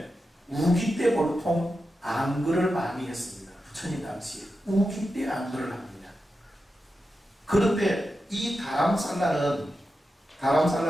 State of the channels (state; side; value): normal; both; correlation 0.90